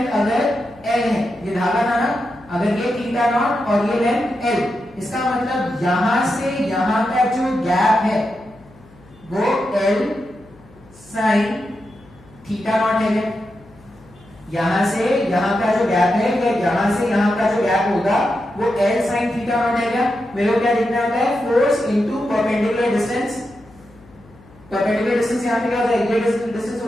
अगर l है, ये धागा था ना, थीटा नॉट और ये लेंथ एल। इसका मतलब यहां से यहां का जो गैप है वो एल साइन थीटा नॉट है। यहां से यहां का जो गैप है या यहां से यहां का जो गैप होगा वो एल साइन थीटा नॉट है। क्या मेरे को क्या देखना होता है, force into perpendicular distance. Perpendicular distance यहां पे क्या हो जाएगा, ये डिस्टेंस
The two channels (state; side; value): noise; left; hum, 26 dB below the sound